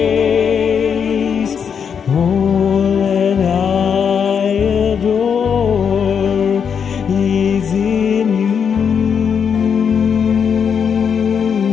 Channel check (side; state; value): right; quieter; 7.0 dB